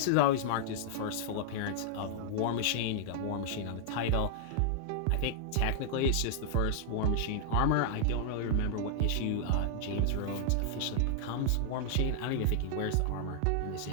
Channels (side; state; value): both; different; correlation -0.01